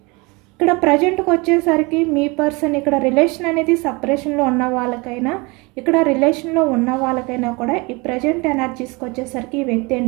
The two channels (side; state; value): left; quieter; 26.6 dB